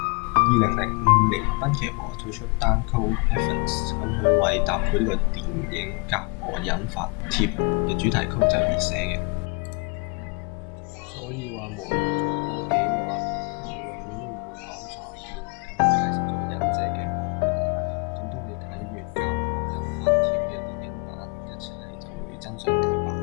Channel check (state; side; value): quieter; right; 33.2 dB